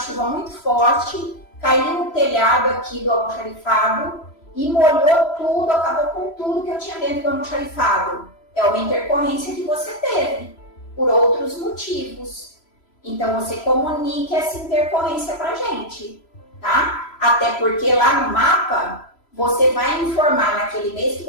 muito forte, caiu no telhado aqui do almoxarifado e molhou tudo, acabou com tudo que eu tinha dentro do almoxarifado. É uma intercorrência que você teve, por outros motivos. Então, você comunique essa intercorrência para a gente. Tá? Até porque lá no mapa, você vai informar naquele mês que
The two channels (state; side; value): late; right; 3.0 ms